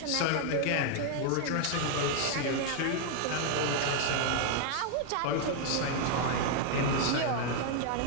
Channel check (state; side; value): different; both; correlation 0.00